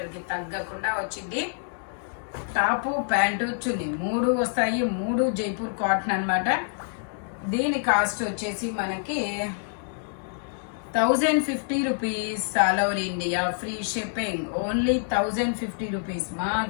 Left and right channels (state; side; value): silent; right; digital silence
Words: కి తగ్గకుండా వచ్చింది. టాప్ ప్యాంటు చున్నీ 3 వస్తాయి. 3 జైపూర్ కాటన్ అనమాట. దీని కాస్ట్ వచ్చేసి మనకి 1050 rupees. All over India free shipping. Only 1050 rupees